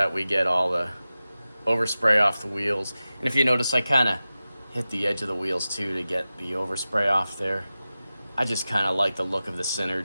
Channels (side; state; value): both; inverted; correlation -0.95